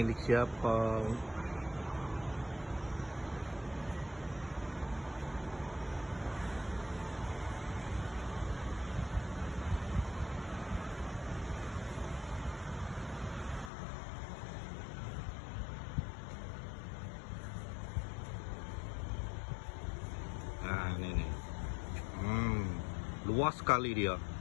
siapa? Nah, ini nih. Luas sekali dia.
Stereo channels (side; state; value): right; drops out; at 13.7 s